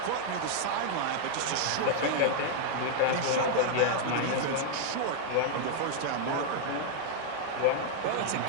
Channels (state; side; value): different; both; correlation 0.00